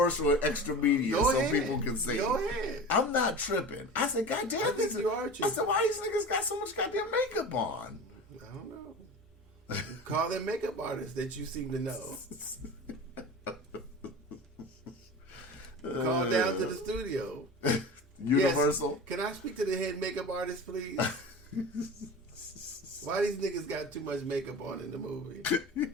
in extra media so people can see. Go ahead. I'm not tripping. I said, God damn, you are tripping. I said, why these niggas got so much goddamn makeup on? I don't know. Call them makeup artists that you seem to know. Call down to the studio. Universal. Yes. Can I speak to the head makeup artist, please? Why these niggas got too much makeup on in the movie?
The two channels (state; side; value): normal; both; correlation 0.33